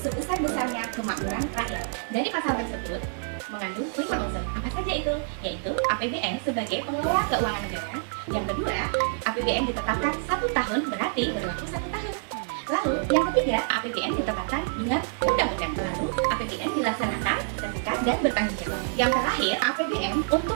kemakmuran rakyat. Dari pasal tersebut mengandung 5 unsur. Apa saja itu? Yaitu APBN sebagai pengelola keuangan negara. Yang kedua, APBN ditetapkan 1 tahun, berarti berlaku 1 tahun. Lalu, yang ketiga, APBN ditetapkan dengan undang-undang. Lalu, APBN dilaksanakan terbuka dan bertanggung jawab. Yang terakhir, APBN untuk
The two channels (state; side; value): silent; left; digital silence